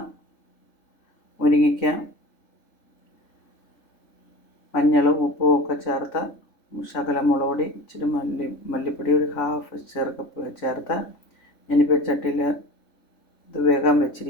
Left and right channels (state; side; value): late; right; 3.5 ms